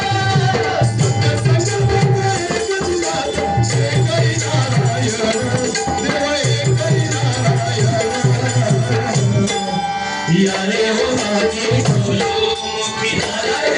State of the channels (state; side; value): identical; both; correlation 1.00